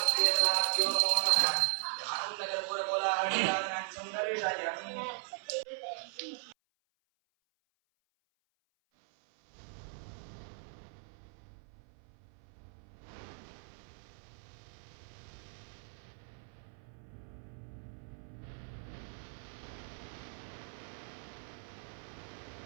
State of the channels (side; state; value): left; silent; 52 dB below the other